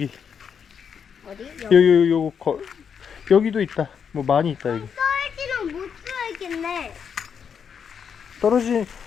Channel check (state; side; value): quieter; right; 7.1 dB